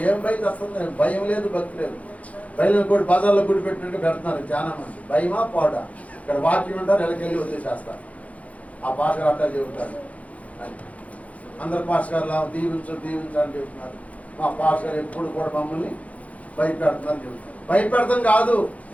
భయం వస్తుంది? భయం లేదు, భక్తి లేదు. బయలు కూడా బజార్లో గుడి పెట్టినట్టు పెడుతున్నారు చాలా మంది. భయమా పోడా? ఇక్కడ వాక్యం ఉంటారు, ఎలకెళ్ళి వదిలేసేస్తారు. ఆ పాస్టర్ అట్లా చెబుతారు అని అందరు పాస్టర్ గారు దీవించు అని చెబుతున్నారు. మా పాస్టర్ గారు ఎప్పుడు కూడా మమ్మల్ని భయపెడుతున్నారు చెబుతున్నారు. భయపెడతాం కాదు,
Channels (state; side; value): late; right; 0.067 ms